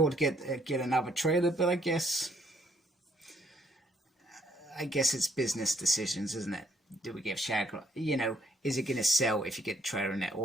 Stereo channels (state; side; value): normal; both; correlation 0.68